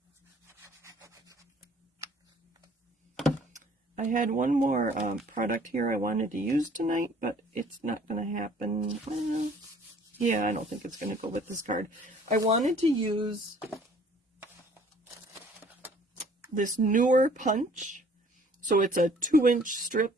I had one more product here I wanted to use tonight, but it's not going to happen. Yeah, I don't think it's going to go with this card. I wanted to use this newer punch. So it's a 2-inch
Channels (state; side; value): normal; both; correlation 0.55